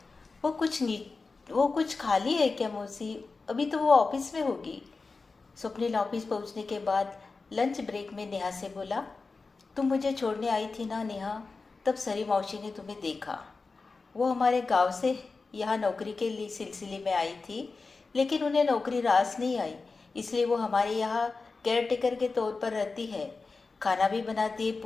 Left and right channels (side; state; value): right; quieter; 4.1 dB